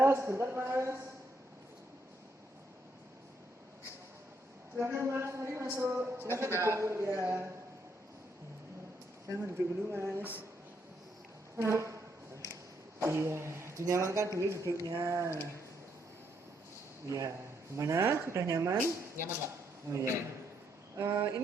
sebentar Mas. Silakan Mas, mari masuk. Silakan duduk ya. Silakan duduk dulu Mas. Iya, dinyamankan dulu duduknya. Iya, gimana? Sudah nyaman? Nyaman Pak? Oh iya.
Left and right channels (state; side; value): normal; both; correlation 0.75